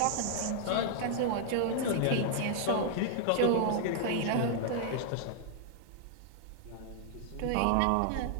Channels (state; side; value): different; both; correlation 0.00